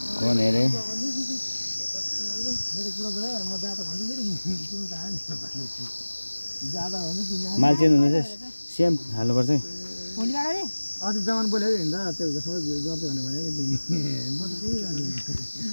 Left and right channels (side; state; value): both; inverted; correlation -1.00